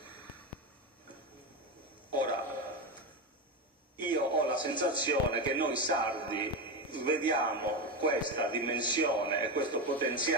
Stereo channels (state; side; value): normal; both; correlation 0.14